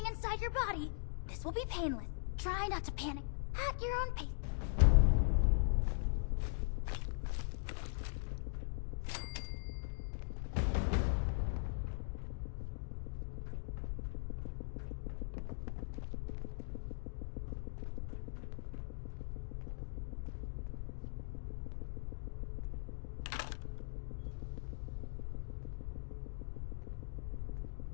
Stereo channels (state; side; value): silent; right; digital silence